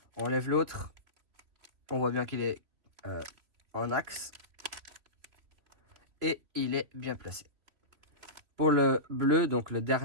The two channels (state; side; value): late; left; 3.2 ms